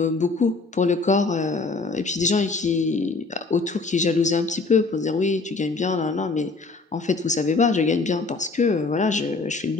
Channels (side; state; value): right; quieter; 3.8 dB